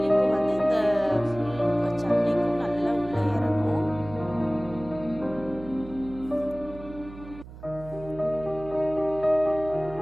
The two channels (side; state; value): right; noise; hum, 16 dB below the sound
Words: வந்து இந்த ஃபுல் சட்னிக்கும் நல்லா உள்ளே இறங்கும்.